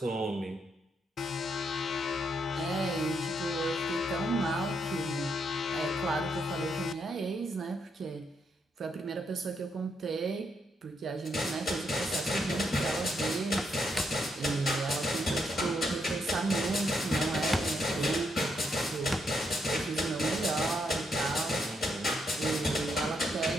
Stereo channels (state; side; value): normal; both; correlation 0.78